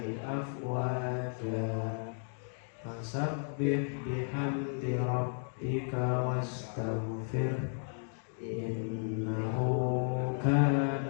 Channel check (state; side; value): silent; right; digital silence